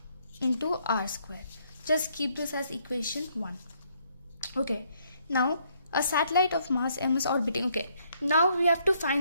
into r square. Just keep this as equation 1. Okay, now a satellite of mass m is orbiting. Okay, now we have to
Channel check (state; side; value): inverted; both; correlation -0.70